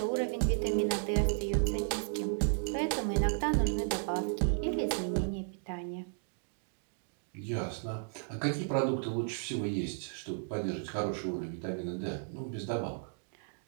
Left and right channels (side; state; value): left; silent; digital silence